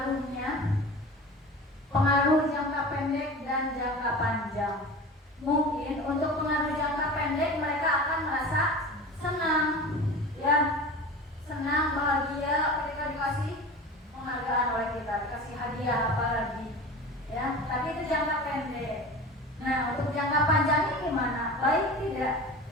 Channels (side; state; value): both; normal; correlation 0.34